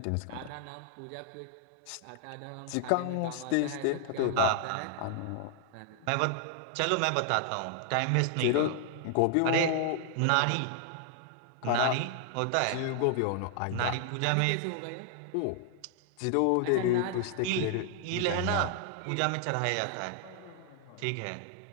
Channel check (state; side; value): different; both; correlation 0.00